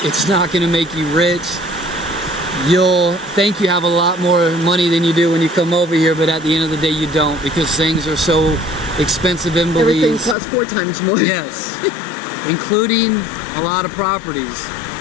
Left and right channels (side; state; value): right; drops out; at 10.4 s